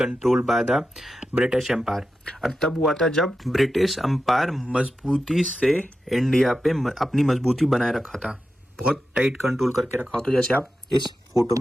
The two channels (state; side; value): normal; both; correlation 0.90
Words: by the British empire. और तब हुआ था जब ब्रिटिश एम्पायर मजबूती से इंडिया पे अपनी मजबूती बनाए रखा था, बहुत टाइट कंट्रोल करके रखा हो, तो जैसे आप इस फोटो